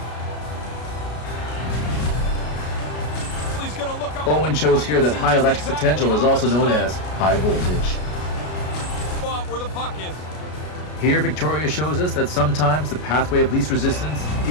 He's gonna look up Owen shows here that high electric potential is also known as high voltage. spot where the puck is. Here Victoria shows us that sometimes the pathway of least resistance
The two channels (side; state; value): right; late; 33 ms